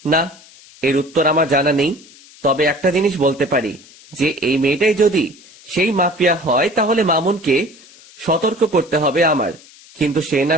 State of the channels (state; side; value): noise; left; hiss, 23 dB below the sound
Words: না, এর উত্তর আমার জানা নেই। তবে একটা জিনিস বলতে পারি, যে এই মেয়েটাই যদি সেই মাফিয়া হয় তাহলে মামুনকে সতর্ক করতে হবে আমার। কিন্তু সে না